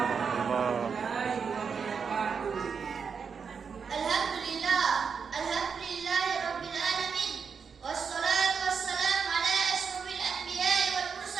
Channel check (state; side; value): quieter; left; 6.0 dB